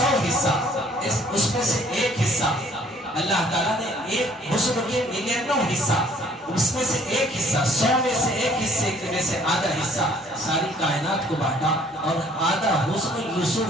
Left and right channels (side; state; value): both; normal; correlation 0.58